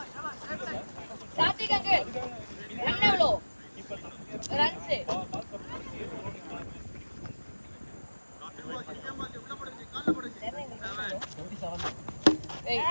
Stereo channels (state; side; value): inverted; both; correlation -1.00